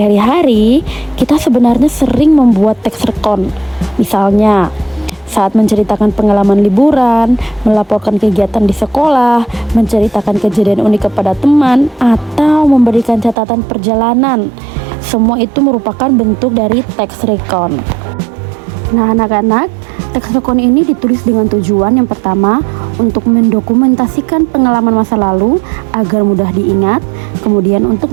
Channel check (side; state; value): left; drops out; at 13.4 s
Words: kita sebenarnya sering membuat teks rekon. Misalnya, saat menceritakan pengalaman liburan, melaporkan kegiatan di sekolah, menceritakan kejadian unik kepada teman, atau memberikan catatan perjalanan. Semua itu merupakan bentuk dari teks rekon. Nah, anak-anak, teks rekon ini ditulis dengan tujuan yang pertama untuk mendokumentasikan pengalaman masa lalu agar mudah diingat, kemudian untuk